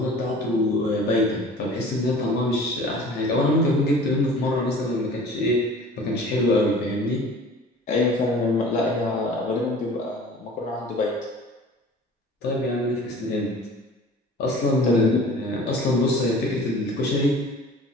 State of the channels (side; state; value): both; normal; correlation 0.44